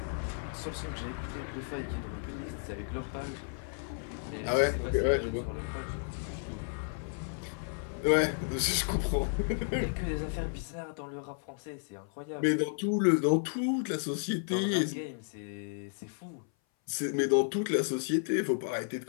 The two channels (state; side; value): silent; right; 56 dB below the other